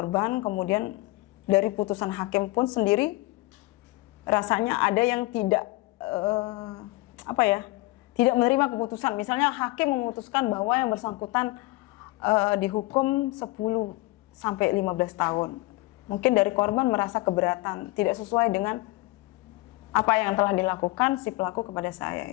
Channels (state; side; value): quieter; right; 21.2 dB